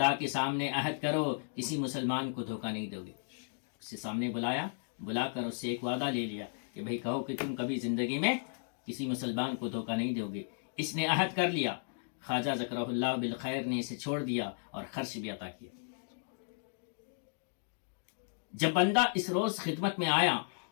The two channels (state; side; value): silent; right; digital silence